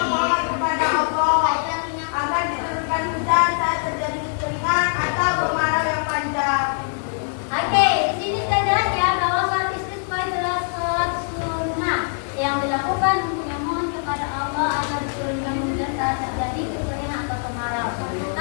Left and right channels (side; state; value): right; silent; 64 dB below the other